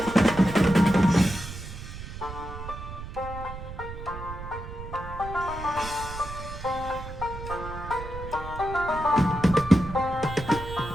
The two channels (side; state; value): right; noise; rumble, 10 dB below the sound